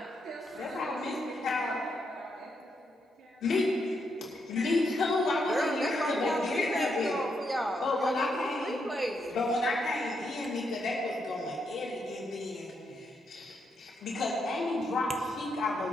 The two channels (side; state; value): both; normal; correlation 0.80